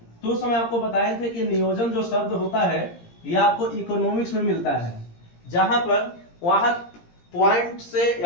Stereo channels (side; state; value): right; late; 17 ms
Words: तो उस समय आपको बताए थे कि नियोजन जो शब्द होता है यह आपको इकोनॉमिक्स में मिलता है, जहां पर वहां पॉइंट से